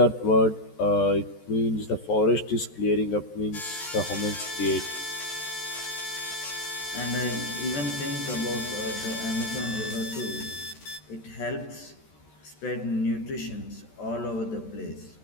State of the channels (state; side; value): late; right; 14 ms